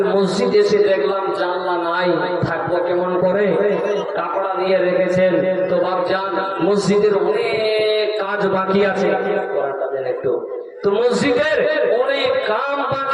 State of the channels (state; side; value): identical; both; correlation 1.00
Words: মসজিদ এসে দেখলাম জানলা নাই, থাকবো কেমন করে, কাপড়া দিয়ে রেখেছেন, তো বাপজান মসজিদের অনেক কাজ বাকি আছে, একটু তো মসজিদের অনেক কাম